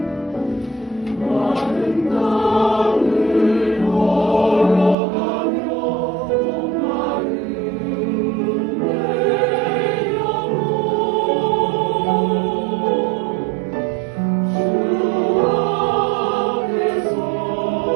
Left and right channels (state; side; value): drops out; left; at 5.0 s